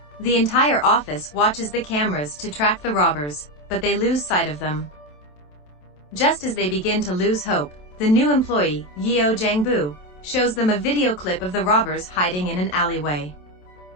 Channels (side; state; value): right; late; 27 ms